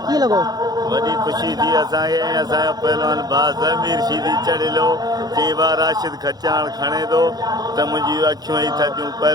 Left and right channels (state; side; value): late; left; 0.19 ms